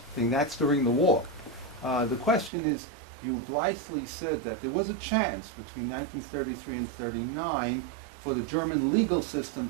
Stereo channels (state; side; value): drops out; left; at 2.5 s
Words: thing. That's during the war. The question is, you blithely said that there was a chance between 1933 and 1939 for the German legal system